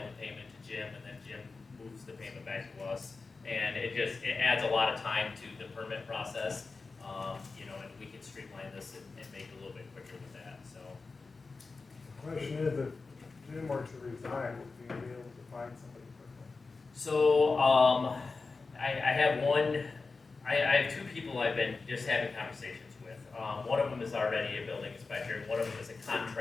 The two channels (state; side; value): quieter; right; 4.1 dB